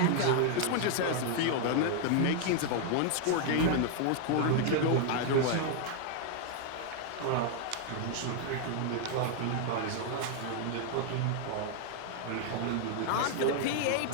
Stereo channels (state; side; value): different; both; correlation 0.00